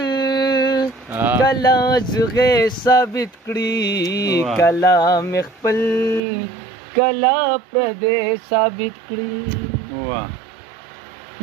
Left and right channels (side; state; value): left; drops out; at 6.2 s